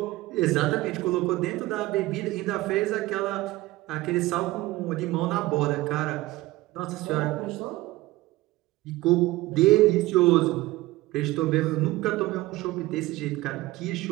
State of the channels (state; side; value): quieter; left; 18.6 dB